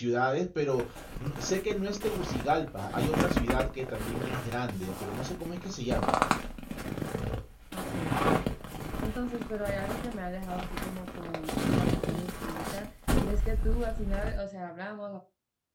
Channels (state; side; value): identical; both; correlation 1.00